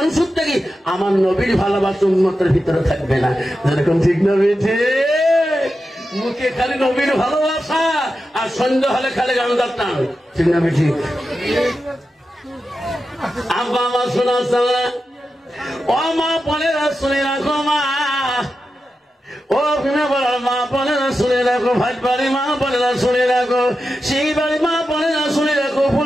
থেকে আমার নবীর ভালোবাসা উন্মতের ভিতরে থাকবে না। যেরকম ঠিক না বেঠে মুখে খালি নবীর ভালোবাসা আর সন্ধ্যা হলে খালি গান্ধার টান, ঠিক না বেঠি? আব্বা মা শোনা ও মা বোনেরা শুনে রাখো, মা ও মা বোনেরা শুনে রাখো, ভাই বাড়ি মা বোনেরা শুনে রাখো, সেই বাড়ি মা বোনেরা শুনে রাখো,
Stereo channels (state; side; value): normal; both; correlation 0.91